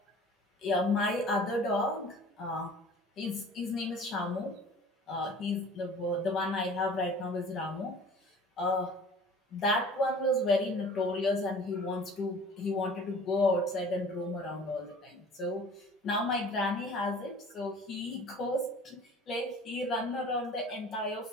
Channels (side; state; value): both; normal; correlation 0.46